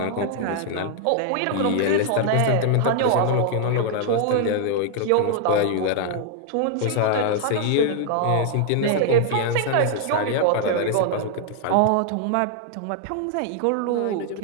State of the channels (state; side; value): different; both; correlation 0.00